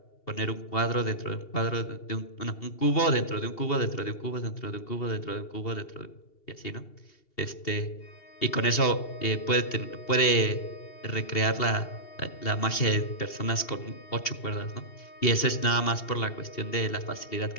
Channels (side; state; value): right; late; 2.7 ms